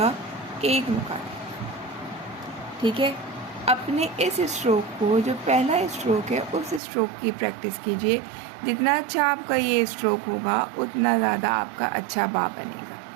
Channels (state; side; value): drops out; left; at 6.8 s